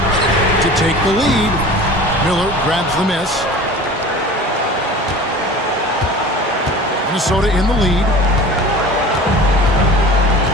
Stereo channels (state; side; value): normal; both; correlation 0.39